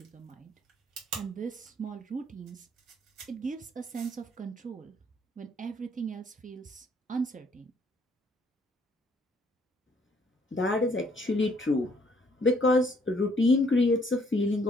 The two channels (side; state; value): both; normal; correlation 0.66